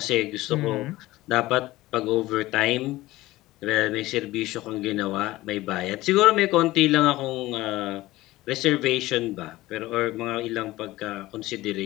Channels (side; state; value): right; quieter; 17.8 dB